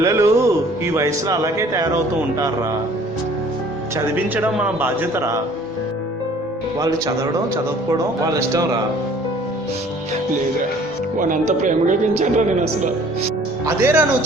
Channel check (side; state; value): both; normal; correlation 0.53